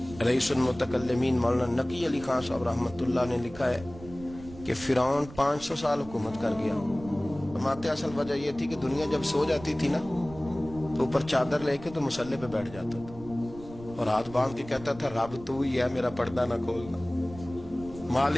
रईसुल मुतकल्लिमीन मौलाना नकी अली खान साहब रहमतुल्लाह ने लिखा है कि फिरौन 500 साल हुकूमत कर गया। फरमाते असल वजह यह थी कि दुनिया जब सो जाती थी ना तो ऊपर चादर लेके तो मुसल्ले पे बैठ जाता था और हाथ बांध के कहता था रब तू ही है, मेरा पर्दा ना खोलना,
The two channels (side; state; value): right; noise; rumble, 16 dB below the sound